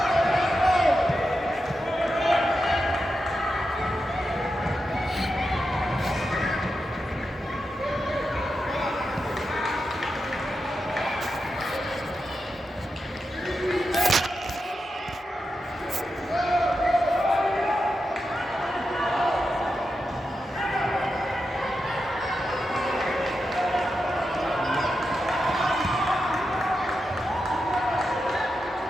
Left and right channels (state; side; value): normal; both; correlation 0.88